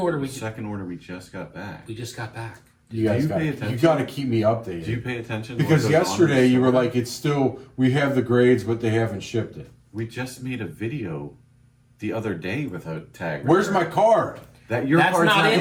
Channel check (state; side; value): identical; both; correlation 1.00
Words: The second order we just got back. we just got back. You guys you got pay attention? you got to keep me updated. Do you pay attention? to what Because goes on in yesterday the you were store? like, it's still, we have the grades, but they haven't shipped it. We just made a video the other day with a tag. Where's my return. card? That your That's card's not in